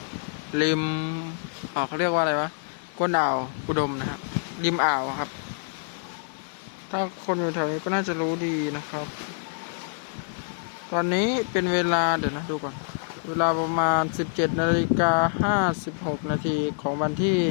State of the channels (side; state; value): right; silent; digital silence